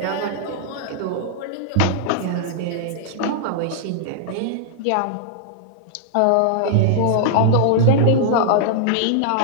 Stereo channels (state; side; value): different; both; correlation -0.01